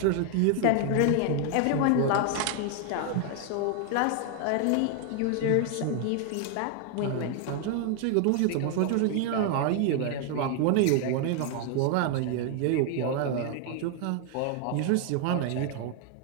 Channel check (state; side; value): different; both; correlation 0.00